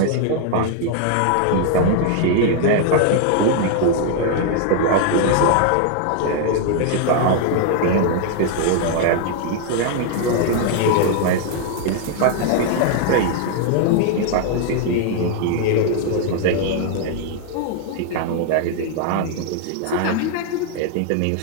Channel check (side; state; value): both; different; correlation 0.00